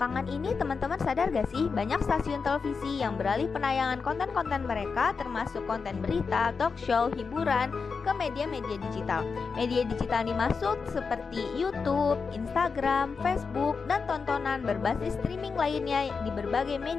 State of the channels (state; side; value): quieter; right; 5.1 dB